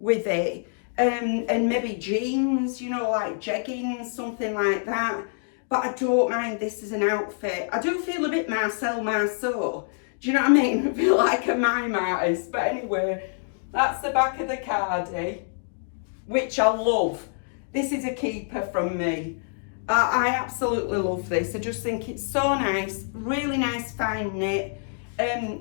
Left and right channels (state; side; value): silent; right; digital silence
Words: with it, and maybe jeans, you know, like jeggings, something like that. But I don't mind this as an outfit. I do feel a bit Marcel Marceau. Do you know what I mean? I feel like a mime artist. But anyway, that's the back of the cardie, which I love. This is a keeper from me. I absolutely love this. I just think it's so nice, really nice fine knit.